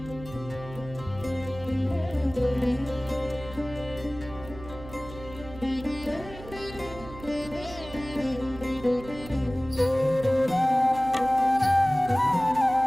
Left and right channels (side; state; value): right; noise; hum, 15 dB below the sound